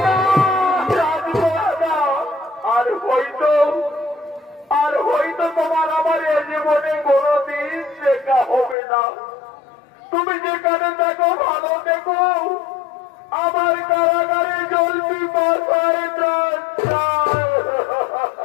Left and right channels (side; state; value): right; drops out; at 8.8 s